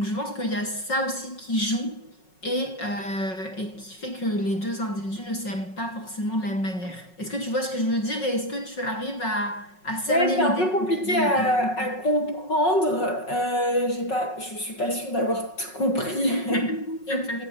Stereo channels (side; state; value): right; late; 5.4 ms